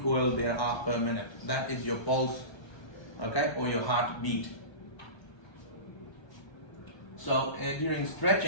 there are per minute? That is your pulse, okay? Or your heartbeat. So during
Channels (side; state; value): right; late; 1.3 ms